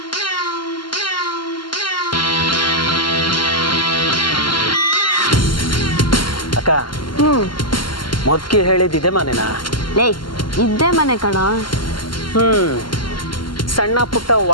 ಅಕ್ಕ, ಮೊದ್ಕಿ ಹೇಳಿದ್ದಿದೆ ಮನೆನಾ? ಲೇ, ಇದ್ದೇ ಮನೆ ಕಣ. ಸಣ್ಣ ಪುಟ್ಟ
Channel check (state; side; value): late; right; 0.72 ms